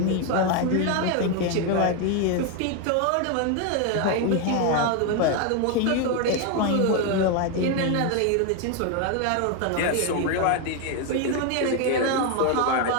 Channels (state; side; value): different; both; correlation 0.01